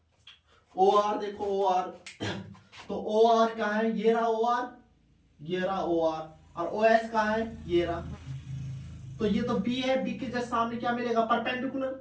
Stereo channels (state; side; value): identical; both; correlation 1.00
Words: ओ आर देखो ओ आर तो ओ आर कहाँ है, ये रहा ओ आर, ये रहा ओ आर, और ओ एस कहाँ है, ये रहा। तो ये तो बी है, बी के जस्ट सामने क्या मिलेगा, परपेंडिकुलर,